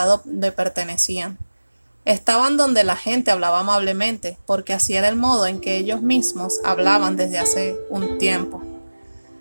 donde pertenecían. Estaban donde la gente hablaba amablemente, porque así era el modo en que ellos mismos hablaban desde hace un tiempo.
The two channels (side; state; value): both; inverted; correlation -1.00